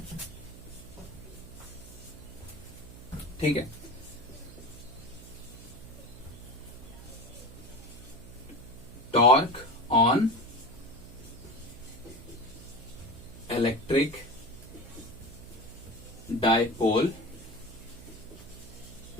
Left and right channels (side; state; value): right; noise; hum, 16 dB below the sound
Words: ठीक है। Torque on electric dipole